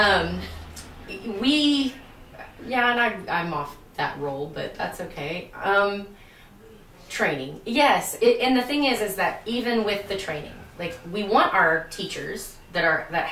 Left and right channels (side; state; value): both; identical; correlation 1.00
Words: I'm off that role, but that's okay. Training, yes. And the thing is that even with the training, like, we want our teachers that